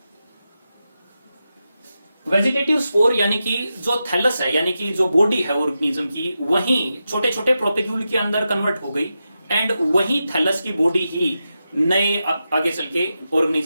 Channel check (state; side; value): inverted; both; correlation -0.89